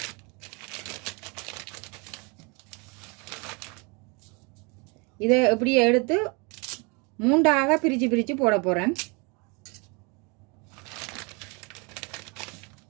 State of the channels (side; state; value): left; quieter; 30.7 dB